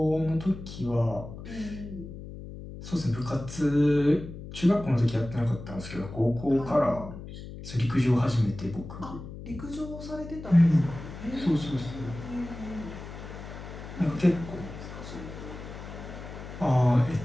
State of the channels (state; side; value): noise; left; hum, 12 dB below the sound